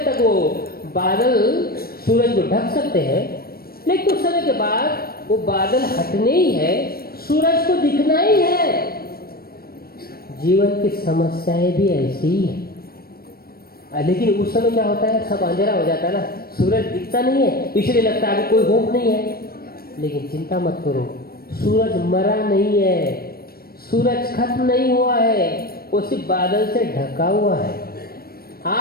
तक वो बादल सूरज को ढक सकते हैं, लेकिन कुछ समय के बाद वो बादल हटने ही है, सूरज को दिखना ही है। जीवन की समस्याएं भी ऐसी ही है। लेकिन उस समय क्या होता है, सब अंधेरा हो जाता है ना, सूरज दिखता नहीं है, इसलिए लगता है अभी कोई होप नहीं है। लेकिन चिंता मत करो, सूरज मरा नहीं है, सूरज खत्म नहीं हुआ है, वो सिर्फ बादल से ढका हुआ है।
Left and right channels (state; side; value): late; right; 0.44 ms